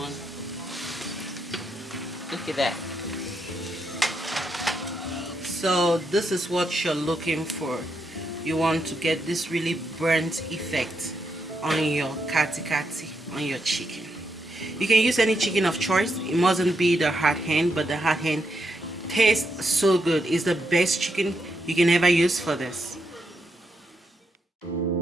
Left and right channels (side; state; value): both; normal; correlation 0.81